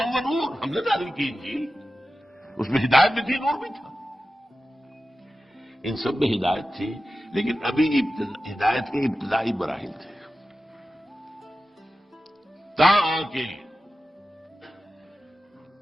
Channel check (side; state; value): both; normal; correlation 0.93